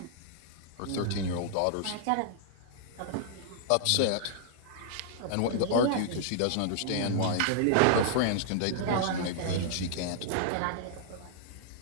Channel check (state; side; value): different; both; correlation -0.01